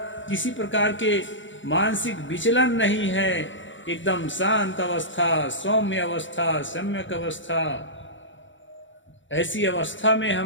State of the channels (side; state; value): right; late; 0.55 ms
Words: किसी प्रकार के मानसिक विचलन नहीं है, एकदम शांत अवस्था, सौम्य अवस्था, सम्यक अवस्था। ऐसी अवस्था में